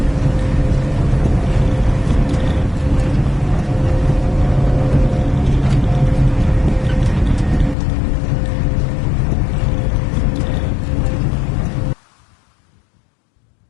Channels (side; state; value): right; drops out; at 7.8 s